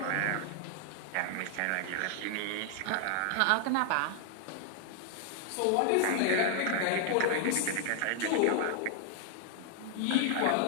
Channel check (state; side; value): different; both; correlation 0.00